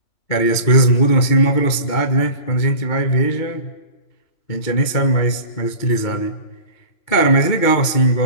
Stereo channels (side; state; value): right; late; 2.3 ms